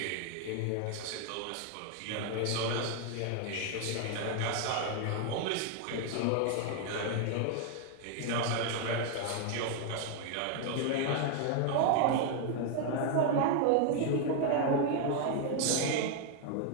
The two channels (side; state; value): both; different; correlation 0.00